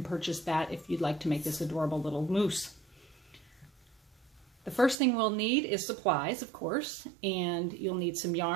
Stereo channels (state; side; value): drops out; left; at 5.0 s